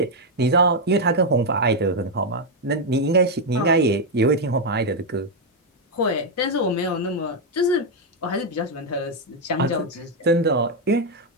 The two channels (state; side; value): normal; both; correlation 0.01